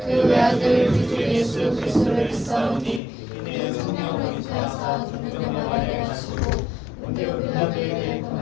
그 외아들 우리 주 예수 그리스도를 믿사오니 이는 성령으로 잉태하사 동정녀 마리아를 하시고 본디오 빌라도에 대해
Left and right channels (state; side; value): drops out; right; at 3.0 s